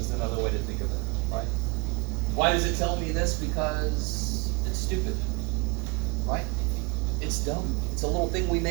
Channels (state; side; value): quieter; left; 28.3 dB